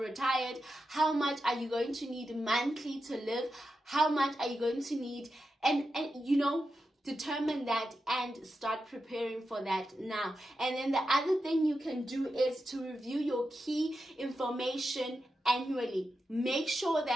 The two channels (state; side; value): normal; both; correlation 0.89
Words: how much are you going to need monthly to live? How much are you going to need? And you know, determine that and start preparing for that now. And then the other thing you can do is to review your key information annually. Make sure